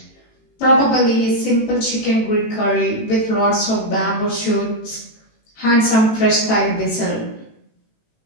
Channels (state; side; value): late; right; 18 ms